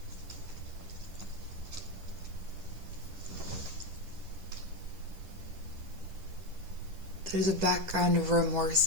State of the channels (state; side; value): late; left; 10 ms